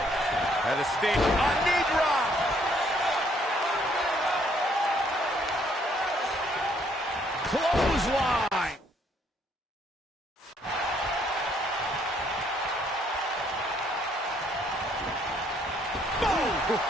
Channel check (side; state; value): both; normal; correlation 0.67